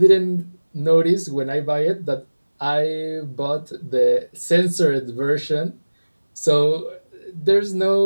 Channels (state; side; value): inverted; both; correlation -1.00